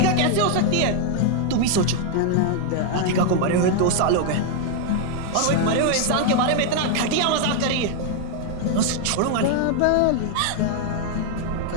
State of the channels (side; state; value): both; different; correlation 0.00